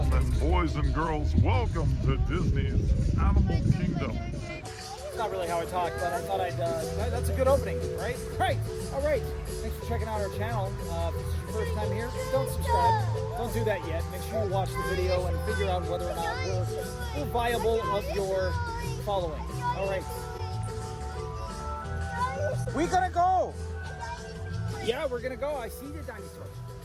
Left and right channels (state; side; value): identical; both; correlation 1.00